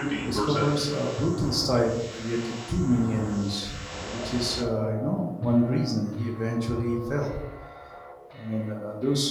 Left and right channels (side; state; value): both; identical; correlation 1.00